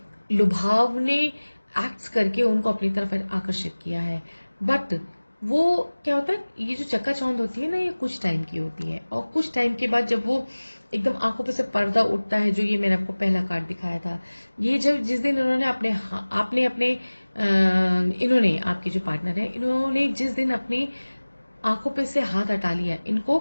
लुभावने एक्ट्स करके उनको अपनी तरफ आकर्षित किया है। बट वो क्या होता है, ये जो चक्काचौंध होती है ना, ये कुछ टाइम की होती है, और कुछ टाइम के बाद जब वो एकदम आंखों पे से पर्दा उठता है, जो ये मैंने आपको पहला कार्ड दिखाया था, ये जब जिस दिन इन्होंने आपने अपने इन्होंने आपके जो पार्टनर है, इन्होंने जिस दिन अपनी आंखों पे से हाथ हटा लिया,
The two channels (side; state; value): both; inverted; correlation -1.00